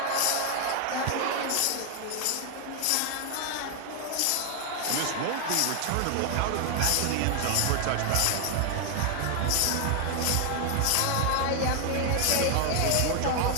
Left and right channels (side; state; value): both; different; correlation 0.00